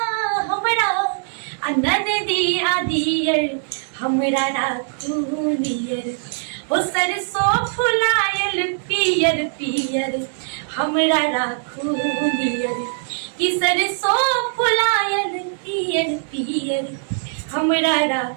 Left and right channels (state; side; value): silent; left; digital silence